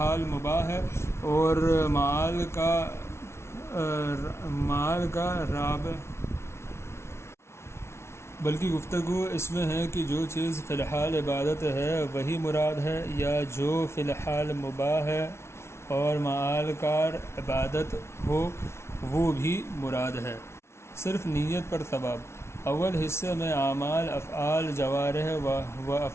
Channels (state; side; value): late; right; 0.13 ms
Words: مباح ہے اور معال کا رابع، بلکہ گفتگو اس میں ہے کہ جو چیز فی الحال عبادت ہے وہی مراد ہے، یا جو فی الحال مباح ہے اور معال کا عبادت ہو وہ بھی مراد ہے۔ صرف نیت پر ثواب۔ اول حصے میں اعمال افعال جوارح و